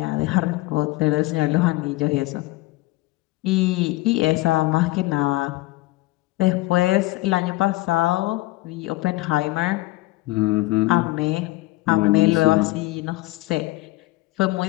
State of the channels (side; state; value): right; quieter; 19.6 dB